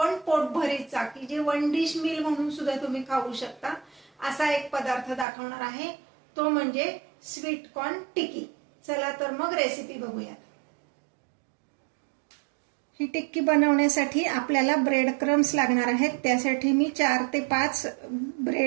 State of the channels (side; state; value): left; drops out; at 5.2 s